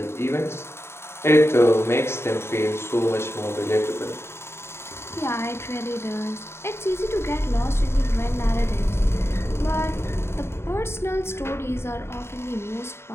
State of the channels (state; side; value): late; right; 0.12 ms